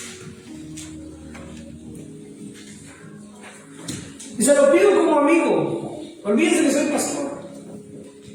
Y se lo pido como amigo. Olvídense que soy pastor.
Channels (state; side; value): identical; both; correlation 1.00